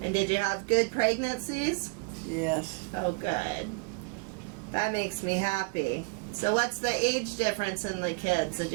And did you have good pregnancies? Yes. Oh, good. That makes me happy. So what's the age difference in the kids? Did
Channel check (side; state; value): left; quieter; 30.3 dB